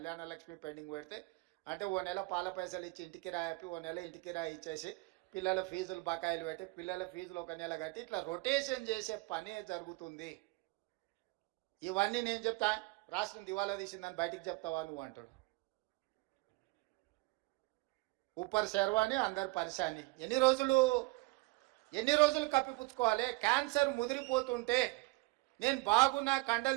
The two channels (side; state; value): left; quieter; 24.3 dB